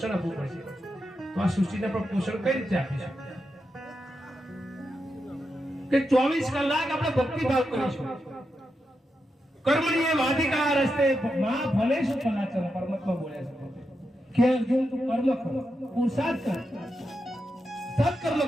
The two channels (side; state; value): both; normal; correlation 0.87